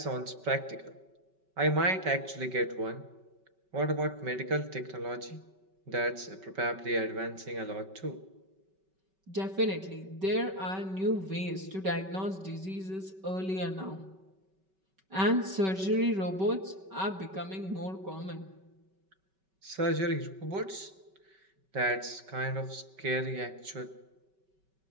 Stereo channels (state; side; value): late; left; 5.3 ms